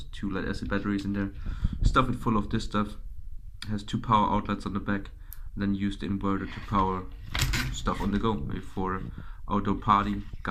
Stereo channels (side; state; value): both; identical; correlation 1.00